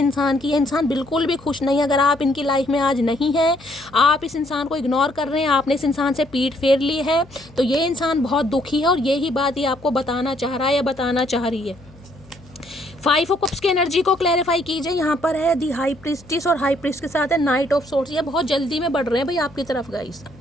की। ये इंसान बिल्कुल भी खुश नहीं है। अगर आप इनकी लाइफ में आज नहीं हैं, आप इस इंसान को इग्नोर कर रहे हैं, आपने इस इंसान से पीठ फेर ली है, तो ये इंसान बहुत दुखी है और यही बात ये आपको बताना चाह रहा है या बताना चाह रही है। 5 ऑफ कप्स की एनर्जी को क्लैरिफाई कीजिए। यहाँ पर है दी हाई प्रीस्टिस और हाई प्रीस्ट के साथ है नाइट ऑफ सोर्ट्स। ये बहुत जल्दी में बढ़ रहे हैं भाई आपकी तरफ गाइस।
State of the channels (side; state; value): left; noise; hum, 24 dB below the sound